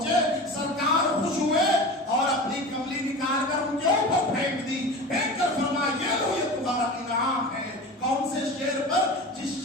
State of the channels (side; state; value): both; normal; correlation 0.32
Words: سرکار خوش ہوئے اور اپنی کملی نکال کر ان کے اوپر پھینک دی، پھینک کر فرمایا یہ لو یہ تمہارا انعام ہے. کون سے شعر پر؟ جس